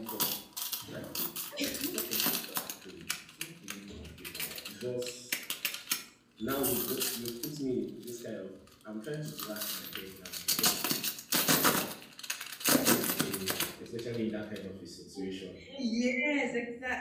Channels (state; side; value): identical; both; correlation 1.00